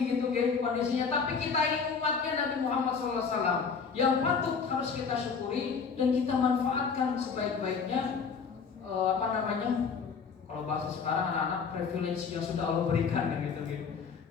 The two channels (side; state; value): right; quieter; 5.7 dB